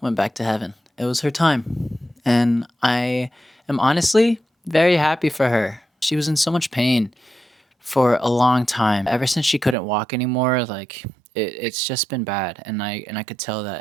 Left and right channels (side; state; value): left; drops out; at 9.8 s